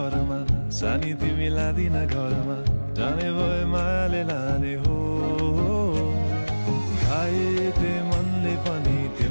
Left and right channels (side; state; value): both; inverted; correlation -1.00